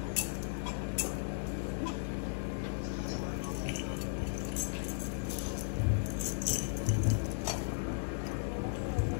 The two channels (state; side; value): silent; right; digital silence